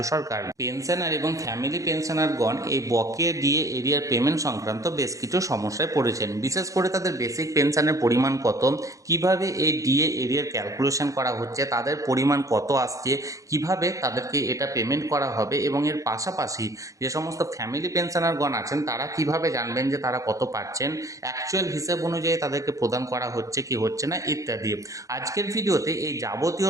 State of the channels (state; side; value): late; left; 0.16 ms